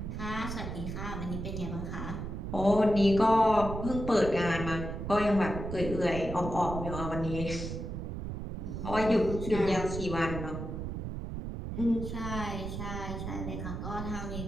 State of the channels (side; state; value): right; noise; rumble, 6 dB below the sound